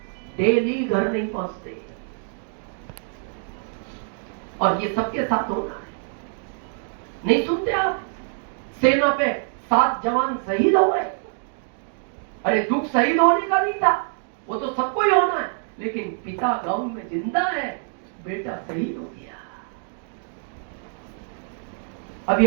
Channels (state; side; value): silent; left; 62 dB below the other